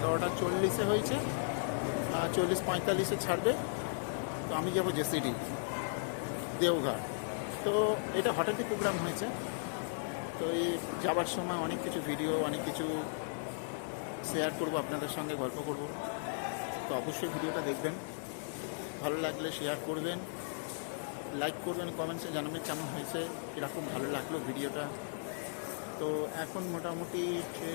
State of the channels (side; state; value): right; silent; digital silence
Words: 40-এ হয়েছে। 40-45-এ ছাড়বে। তো আমি যাবো জেসিডি দেওঘর। তো এটা হঠাৎই প্রোগ্রাম হয়েছে। তো এই যাবার সময় অনেক কিছু ভিডিও, অনেক কিছু শেয়ার করব আপনাদের সঙ্গে, গল্প করব। তো অবশ্যই ভিডিওটা দেখবেন, ভালো লাগলে শেয়ার করবেন, লাইক করবেন, কমেন্টসে জানাবেন কেমন হয়েছে, কীরকম ভালো লাগলো ভিডিওটা। তো এখন মোটামুটি